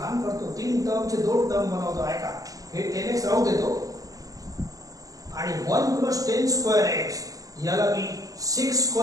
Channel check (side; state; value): left; late; 0.17 ms